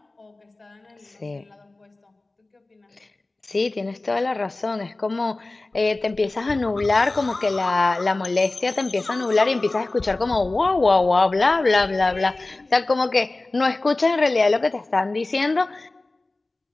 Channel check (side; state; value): right; quieter; 3.1 dB